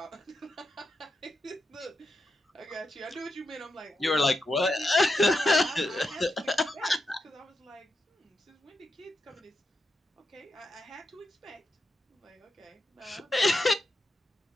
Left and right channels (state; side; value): normal; both; correlation 0.87